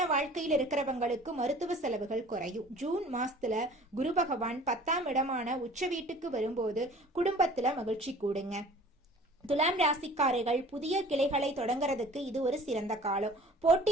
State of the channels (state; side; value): normal; both; correlation 0.47